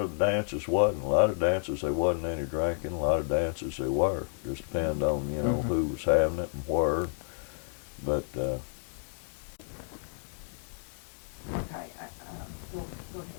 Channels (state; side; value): silent; right; digital silence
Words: dances wasn't. A lot of dances, there wasn't any drinking. A lot of dances, there were. Just depend on, you know, who was having it and where. But Okay,